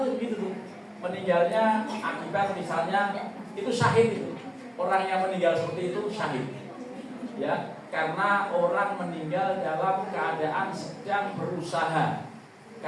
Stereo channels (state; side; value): identical; both; correlation 1.00